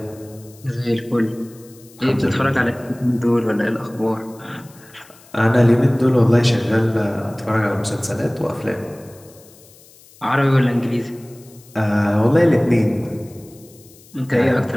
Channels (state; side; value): noise; left; hiss, 25 dB below the sound